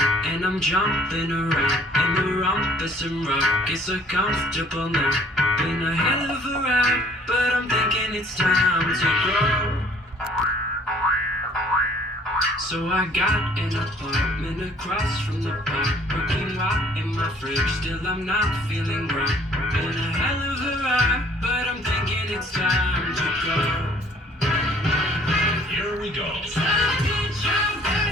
and I'm jumping around in the rumpus and rock. It's so comfortable now. Been a hell of a ride, but I'm thinking it's time to grow. So I got an apartment across from the park, cooking right in my fridge. Still I'm not feeling right. Been a hell of a ride, but I'm thinking it's time to go. Here we go.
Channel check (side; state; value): both; normal; correlation 0.57